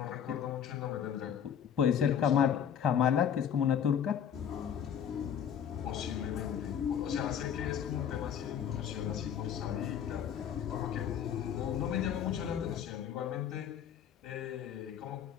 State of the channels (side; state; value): right; quieter; 8.6 dB